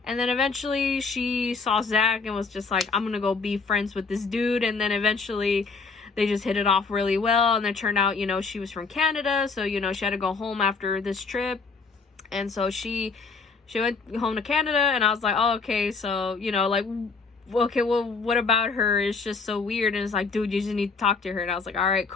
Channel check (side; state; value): right; quieter; 4.6 dB